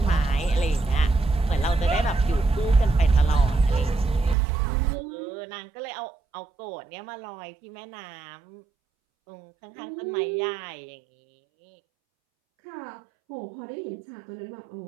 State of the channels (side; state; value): left; drops out; at 4.4 s